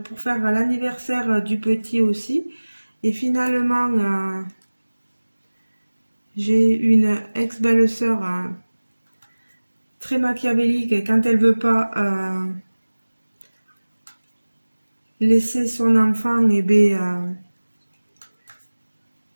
pour faire l'anniversaire du petit aussi, et finalement j'ai une ex-belle-sœur très machiavélique et quand elle veut pas laisser son enfant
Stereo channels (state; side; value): inverted; both; correlation -1.00